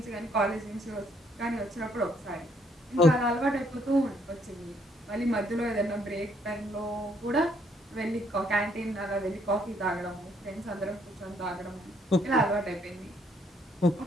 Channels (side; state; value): both; normal; correlation 0.68